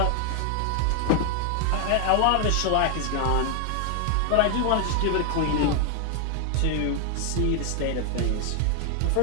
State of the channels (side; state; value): both; different; correlation 0.01